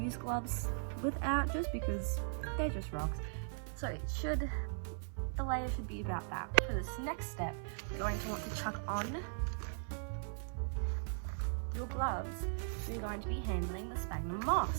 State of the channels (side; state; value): left; silent; 52 dB below the other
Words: gloves without, just because they're just rocks. So the layer should be about that. For this next step, you're going to want to chuck on your gloves. So you're going to be handling the sphagnum